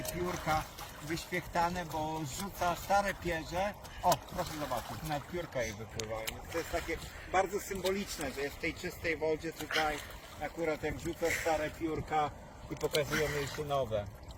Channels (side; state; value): both; identical; correlation 1.00